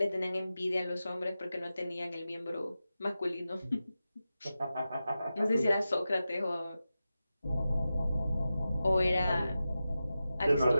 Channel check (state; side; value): inverted; both; correlation -0.92